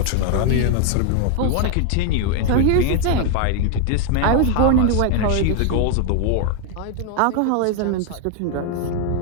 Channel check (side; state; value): both; different; correlation 0.00